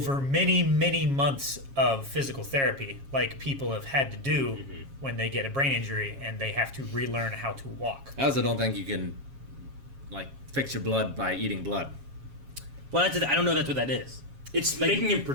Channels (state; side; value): late; left; 7.3 ms